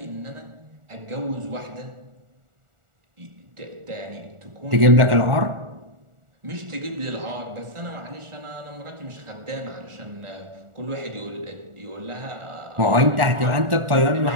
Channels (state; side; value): late; left; 1.4 ms